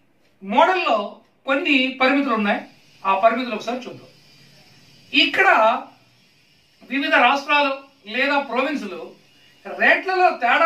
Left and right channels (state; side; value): identical; both; correlation 1.00